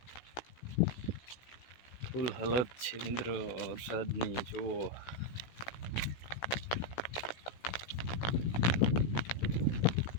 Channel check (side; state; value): right; late; 16 ms